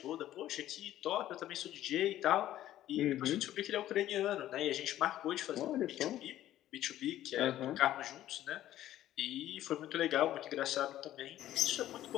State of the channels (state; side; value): quieter; right; 13.1 dB